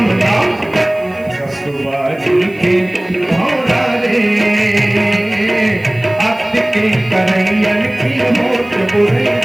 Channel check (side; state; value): right; noise; hiss, 29 dB below the sound